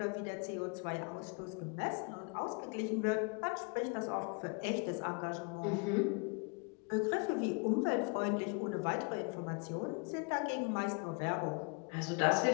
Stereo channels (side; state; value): right; quieter; 35.4 dB